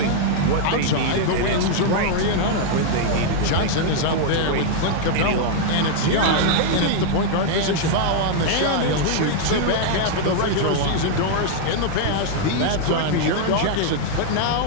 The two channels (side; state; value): both; different; correlation -0.01